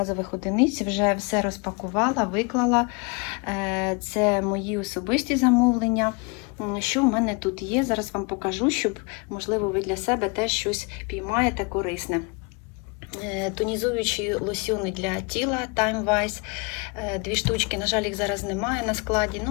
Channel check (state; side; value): quieter; right; 31.3 dB